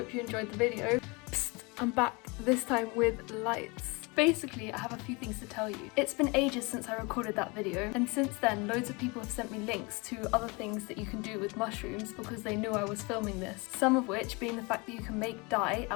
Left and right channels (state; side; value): quieter; right; 27.7 dB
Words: you enjoyed the video. Psst, I'm back, this time with lights. Basically, I have a few things to tell you. It's been ages since I recorded that video, and since then loads of people have sent me links to other things that you can do with mushrooms because they knew I was filming this. Some of which being the fact that you can make dye